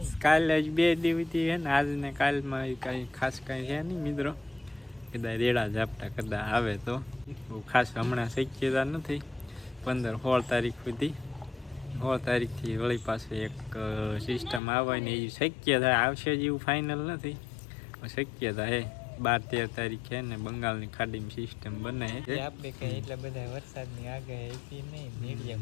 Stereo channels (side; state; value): right; drops out; at 14.6 s